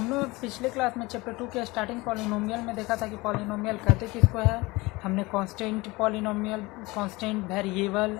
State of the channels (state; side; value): quieter; right; 22.6 dB